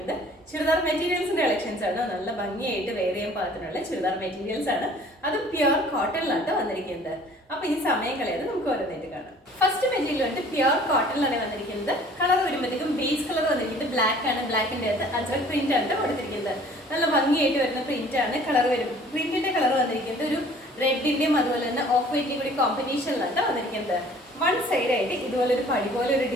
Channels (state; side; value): normal; both; correlation 0.52